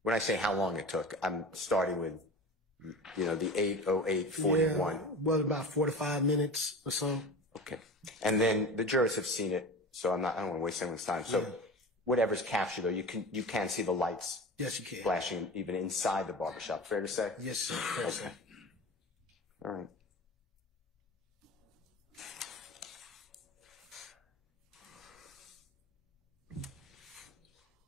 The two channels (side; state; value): both; normal; correlation 0.32